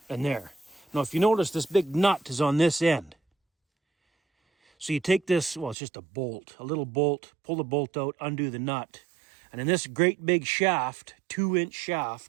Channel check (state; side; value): drops out; left; at 5.8 s